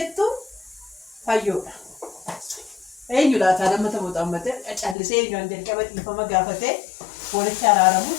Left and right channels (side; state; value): right; drops out; at 5.0 s